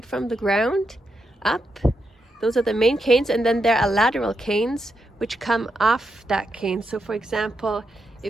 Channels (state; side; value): normal; both; correlation 0.84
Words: from the ground up. Those are the main canes, and then there are lateral canes which come off that cane. So for example,